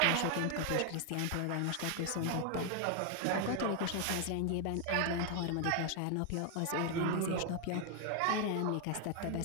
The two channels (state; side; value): different; both; correlation 0.01